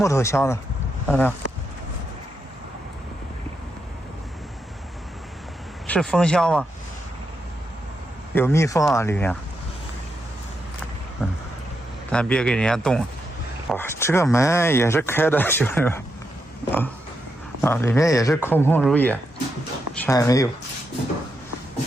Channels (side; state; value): both; normal; correlation 0.83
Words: 头箱子，看到没有？是蜂箱吗？有蜜蜂啊，里面。咱别给人家动了。哇，这个门也是开的，兄弟们。啊，里面也是空空如也，啥也没有。